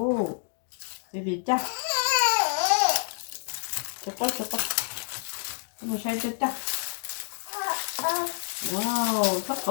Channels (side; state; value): right; silent; 56 dB below the other